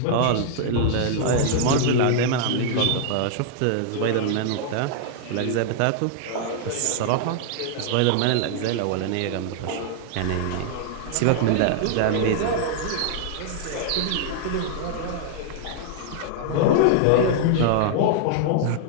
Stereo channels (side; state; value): both; different; correlation -0.01